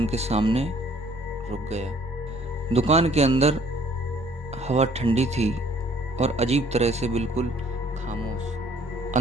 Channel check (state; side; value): normal; both; correlation 0.59